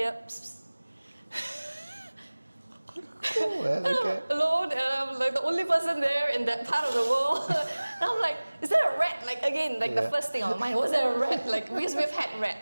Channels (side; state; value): both; inverted; correlation -1.00